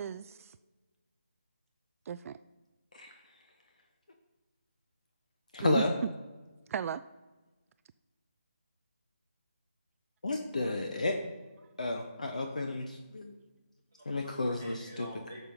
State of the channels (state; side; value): inverted; both; correlation -0.78